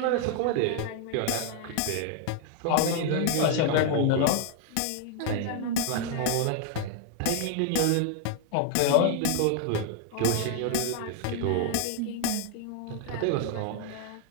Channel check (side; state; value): both; different; correlation 0.00